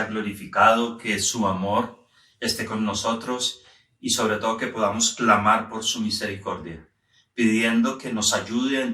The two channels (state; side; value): identical; both; correlation 1.00